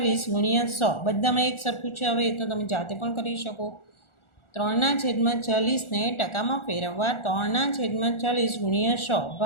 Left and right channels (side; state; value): right; late; 1.4 ms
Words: ગુણ્યા 100 બધામાં એક સરખું છે. હવે એ તો તમે જાતે પણ કરી શકો. 3/40ને ટકામાં ફેરવવા 3/40 ગુણ્યા 100